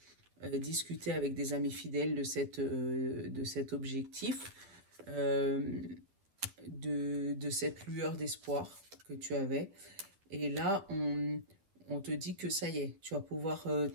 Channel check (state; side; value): late; left; 9.9 ms